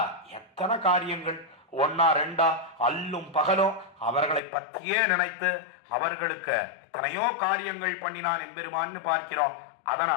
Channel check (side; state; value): right; drops out; at 4.4 s